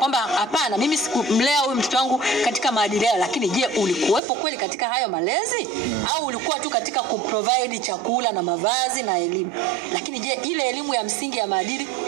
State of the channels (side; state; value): left; drops out; at 4.2 s